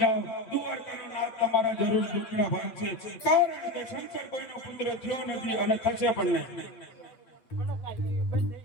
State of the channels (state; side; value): late; right; 8.9 ms